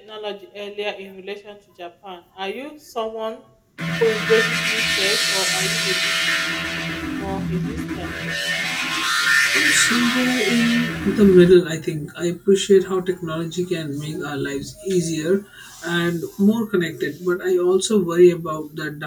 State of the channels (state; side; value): identical; both; correlation 1.00